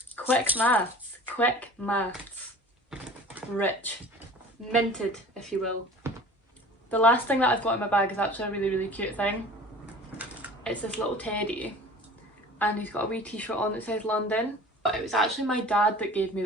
Quick maths, quick maths. Rich. Minted, if you will. The last thing that I've got in my bag is actually a really cute thing. It's this little teddy and he's got a wee t-shirt on that says London. But it was actually my dad that gave me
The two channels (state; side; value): normal; both; correlation 0.43